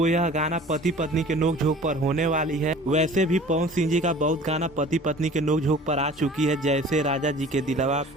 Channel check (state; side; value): normal; both; correlation 0.45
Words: यह गाना पति पत्नी के नोकझोंक पर होने वाली है। वैसे भी पवन सिंह जी का बहुत गाना पति पत्नी के नोकझोंक पर आ चुकी है, जैसे राजा जी के दिलवा,